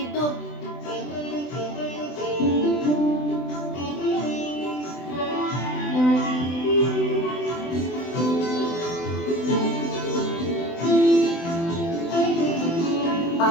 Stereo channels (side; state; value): right; late; 24 ms